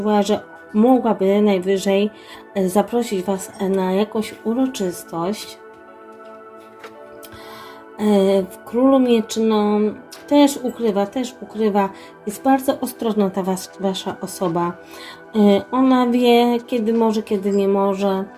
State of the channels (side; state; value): both; identical; correlation 1.00